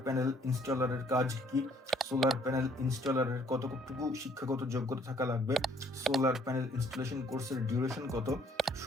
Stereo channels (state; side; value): normal; both; correlation 0.62